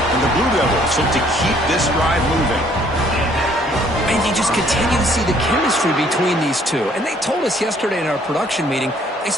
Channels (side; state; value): both; normal; correlation 0.62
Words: And the Blue Devils look to keep this drive moving. And you just continue to see the chemistry between these two. And they told us yesterday in our production meeting, they